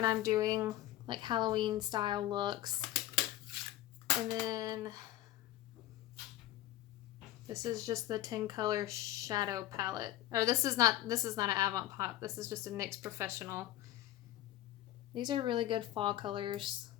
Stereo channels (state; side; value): quieter; right; 14.4 dB